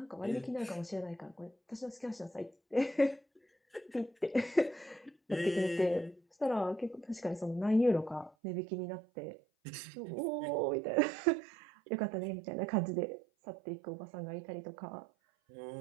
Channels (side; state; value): left; drops out; at 8.3 s